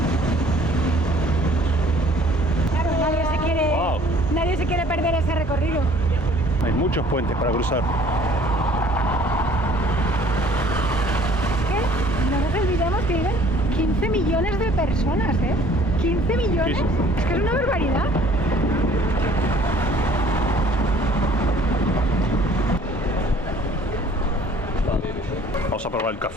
Claro, nadie se quiere perder ese recorrido. Hay muchos puentes para cruzar. No nos olvidemos que viven 15 millones de personas, ¿eh? 15 millones. Sí. Es que es una barbaridad. Vamos a probar el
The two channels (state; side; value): normal; both; correlation 0.55